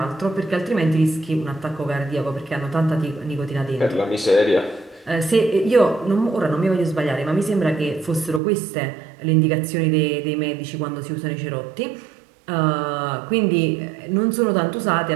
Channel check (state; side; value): drops out; left; at 8.4 s